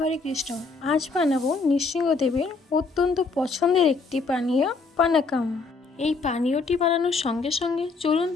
কৃষ্ণ। আজ বানাবো নৃসিংহদেবের অত্যন্ত পছন্দের একটি পানীয় পানাকাম। এই পানীয়টি বানানোর সঙ্গে সঙ্গে চলুন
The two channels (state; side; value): quieter; right; 4.2 dB